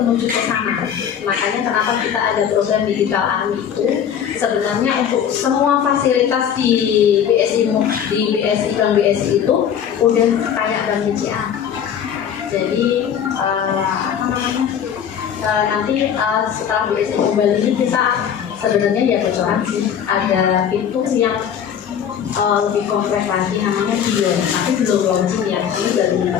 ke sana. Makanya kenapa kita ada program digital army itu sebenarnya untuk semua fasilitas di BSI Bank BSI itu udah kayak Bank BCA. Jadi nanti setelah BSI Mobile ini kita sebenarnya ya bocoran sih ada fitur yang lebih kompleks lagi namanya dia, tapi belum launching ya, ini baru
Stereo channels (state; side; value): quieter; right; 8.5 dB